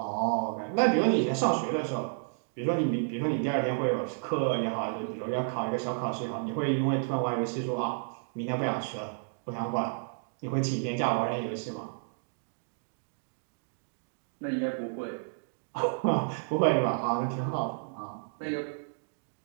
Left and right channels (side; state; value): left; silent; digital silence